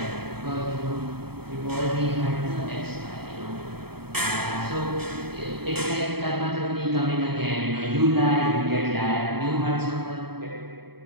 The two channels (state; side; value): late; left; 0.96 ms